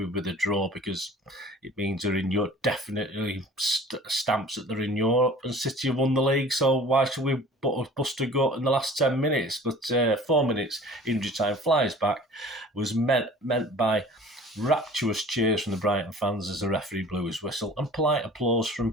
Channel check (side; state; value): both; normal; correlation 0.46